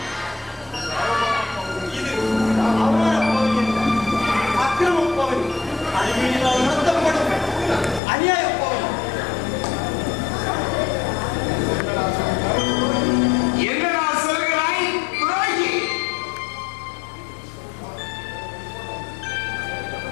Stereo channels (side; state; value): right; drops out; at 8.0 s